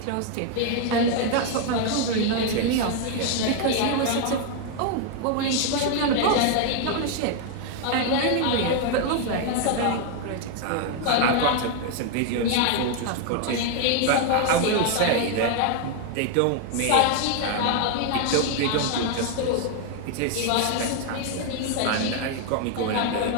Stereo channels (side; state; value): both; different; correlation 0.00